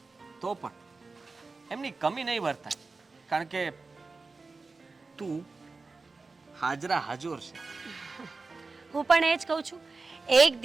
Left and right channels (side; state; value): left; quieter; 3.9 dB